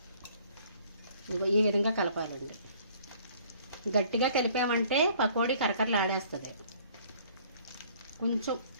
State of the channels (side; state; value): both; inverted; correlation -0.57